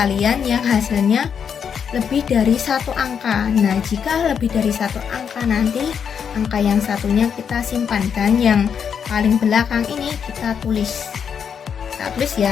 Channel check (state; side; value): quieter; right; 7.3 dB